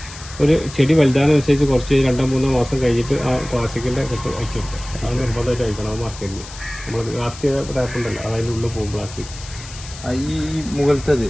ഒരു ചെടി വലുതാനുസരിച്ച് കുറച്ച് 2-3 മാസം കഴിഞ്ഞിട്ട് ആ പ്ലാസ്റ്റിക്കിന്റെ കെട്ട് അയച്ചു കൊടുക്കുക. അത് നിർബന്ധമായിട്ട് അയക്കണം. അത് മാർക്കറ്റിൽ നമ്മൾ ലാസ്റ്റ് ചെയ്ത ടാപ്പ് ഉണ്ടല്ലോ അതിൻ്റെ ഉള്ളിൽ പോകും പ്ലാസ്റ്റിക്. ഈ മുകളിലത്തത്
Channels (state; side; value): noise; left; hiss, 15 dB below the sound